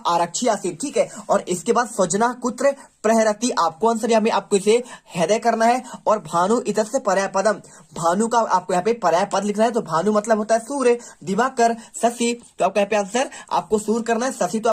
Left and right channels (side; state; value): both; identical; correlation 1.00